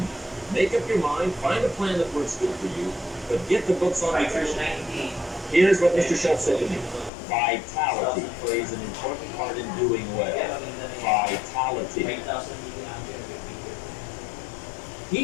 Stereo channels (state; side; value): drops out; right; at 7.1 s